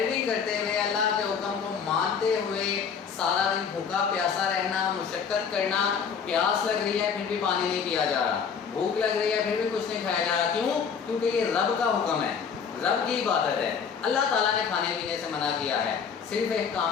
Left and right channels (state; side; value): quieter; right; 6.5 dB